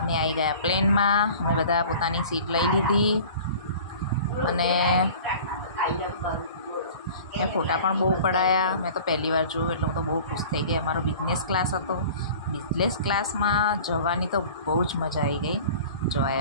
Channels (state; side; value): inverted; both; correlation -0.43